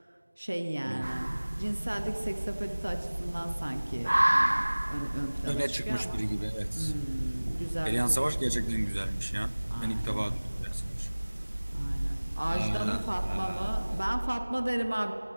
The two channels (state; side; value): inverted; both; correlation -1.00